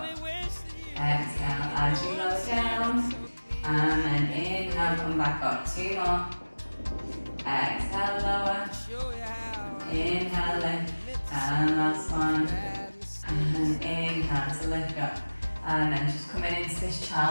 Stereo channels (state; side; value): inverted; both; correlation -1.00